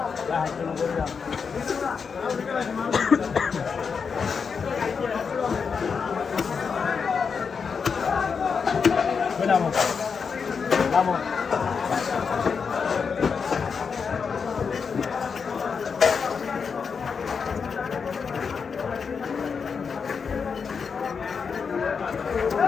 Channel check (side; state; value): right; quieter; 5.8 dB